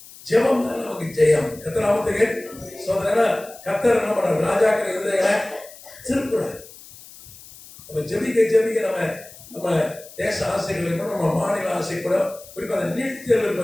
ஜெபம் தான் நமக்கு ஜெயம். கர்த்தராமத்துக்கு சோதனை. கர்த்தர் என்ன பண்றாரு, ராஜாக்கள் இருந்தவங்களை திருப்புறாரு. நம்ம ஜெபிக்க ஜெபிக்க நம்ம தேச ஆசைகள் இருக்கணும், நம்ம மாநில ஆசை கூட. குறிப்பாக அந்த நீட் தேர்வு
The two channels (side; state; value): left; noise; hiss, 19 dB below the sound